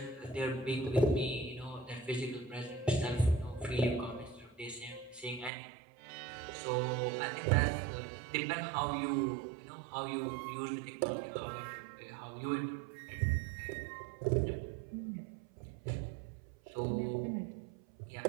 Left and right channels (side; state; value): left; drops out; at 5.5 s